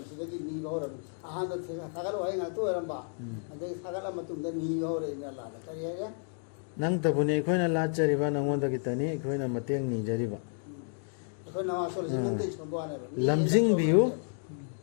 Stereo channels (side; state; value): right; silent; 57 dB below the other